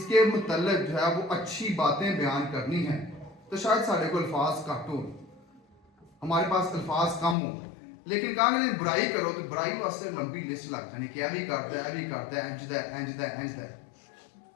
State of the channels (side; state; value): right; drops out; at 7.4 s